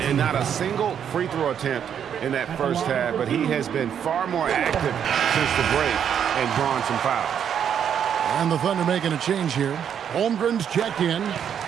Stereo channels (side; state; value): left; quieter; 8.5 dB